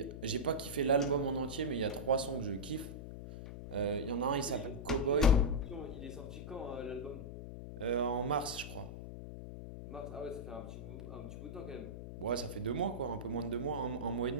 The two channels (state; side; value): noise; left; hum, 9 dB below the sound